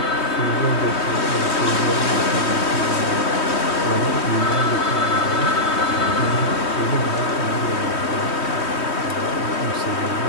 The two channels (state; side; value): late; right; 3.2 ms